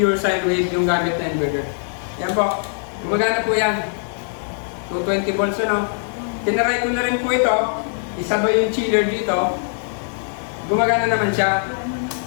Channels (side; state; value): right; silent; 65 dB below the other